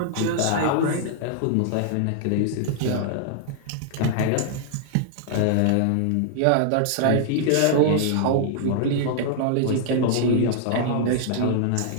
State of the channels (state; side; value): different; both; correlation -0.01